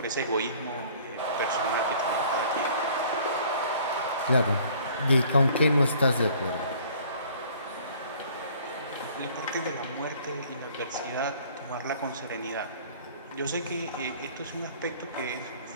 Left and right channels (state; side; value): inverted; both; correlation -0.54